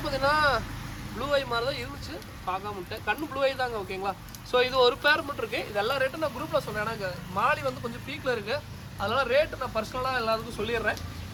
பார்த்தீங்கன்னா ப்ளூ ஐ மாதிரி தான் இருந்துச்சு, பார்க்காம விட்டேன். கண்ணு ப்ளூ ஐ தாங்க ஓகேங்களா. ஸோ இது ஒரு பேர் மட்டும் இருக்குது. இது எல்லா ரேட்டும் நான் குரூப்பில் சொன்னேன். எனக்கு மாலி வந்து கொஞ்சம் பீக்கில் இருக்குது, அதனால் ரேட்டு நான் பர்சனலாக எல்லாத்துக்கும் சொல்லிடுறேன்.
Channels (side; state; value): both; identical; correlation 1.00